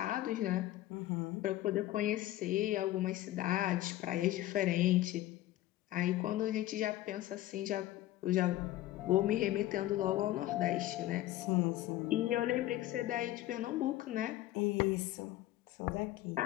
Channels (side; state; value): right; quieter; 15.2 dB